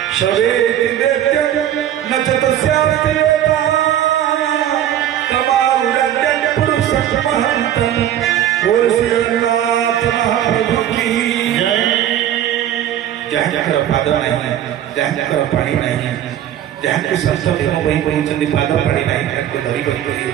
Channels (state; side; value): quieter; left; 11.2 dB